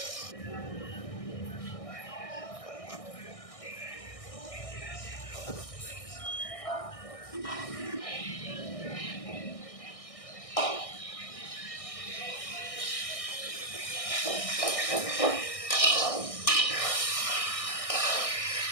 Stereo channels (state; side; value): late; right; 1.6 ms